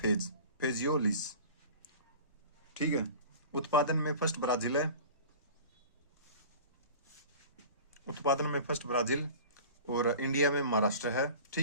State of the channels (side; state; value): both; inverted; correlation -0.40